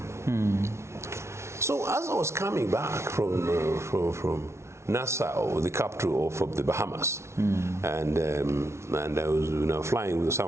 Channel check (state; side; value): late; left; 0.13 ms